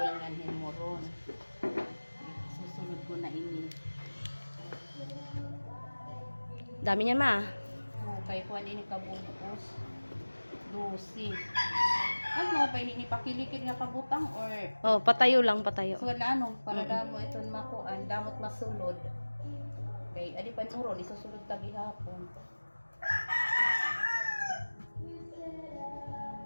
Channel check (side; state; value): both; inverted; correlation -1.00